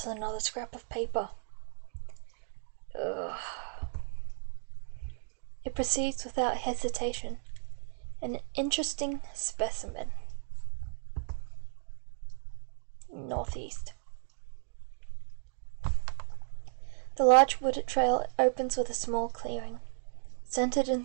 another scrap of paper. Ugh. It proceeds without hesitation. An interesting specimen. Northeast. The large wooded trail opens with a small clearing. Centered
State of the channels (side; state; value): left; silent; digital silence